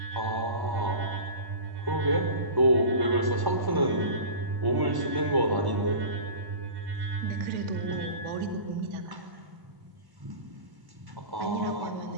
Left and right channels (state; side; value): late; left; 1.1 ms